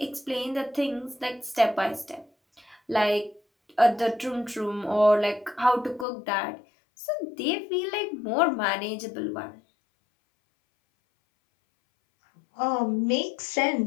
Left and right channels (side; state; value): right; drops out; at 6.1 s